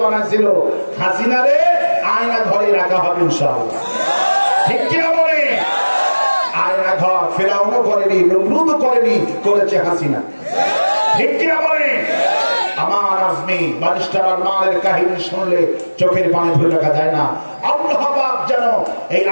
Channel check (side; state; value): both; inverted; correlation -1.00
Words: বানাইছিল হাসিনারে আয়না ঘরে রাখা হবে ইনশাআল্লাহ, ঠিক কিনা বলে? আয়না ঘর ফেরাউনও করেনি, নমরুদও করেনি, করেছে হাসিনা, ঠিক কিনা বলে? আমার আজমি বারিস্টার আরমানের কাহিনী শুনলে চোখের পানি ধরে রাখা যায় না। আল্লাহ পাক যেন এই